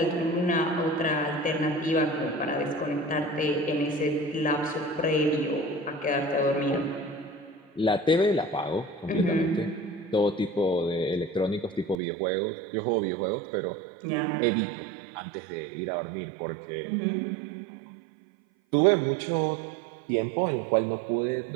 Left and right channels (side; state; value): left; drops out; at 12.0 s